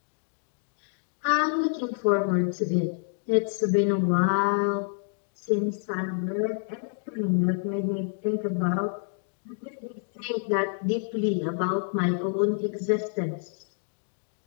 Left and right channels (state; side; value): silent; right; digital silence